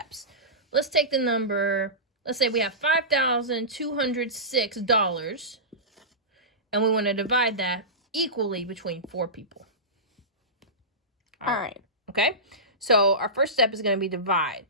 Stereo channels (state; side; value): normal; both; correlation -0.20